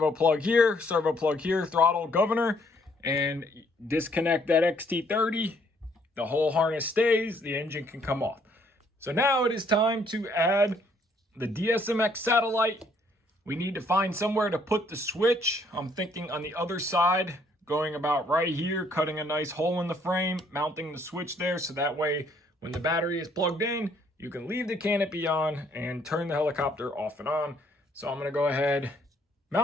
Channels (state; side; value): normal; both; correlation 0.66